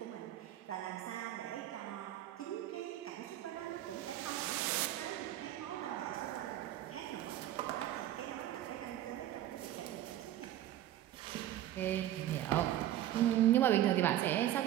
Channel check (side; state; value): left; quieter; 12.9 dB